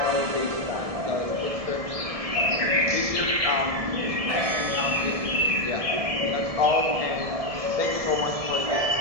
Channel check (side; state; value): left; late; 1.7 ms